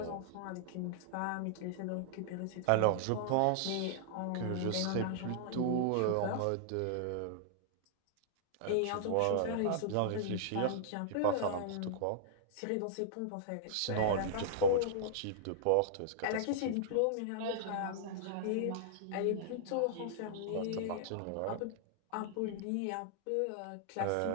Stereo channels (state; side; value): different; both; correlation -0.01